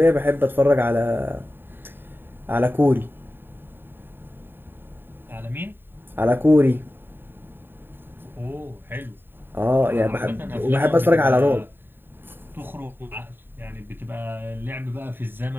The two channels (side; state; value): left; late; 0.097 ms